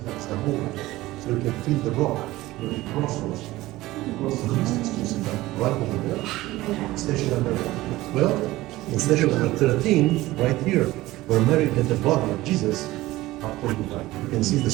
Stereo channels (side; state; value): left; quieter; 17.8 dB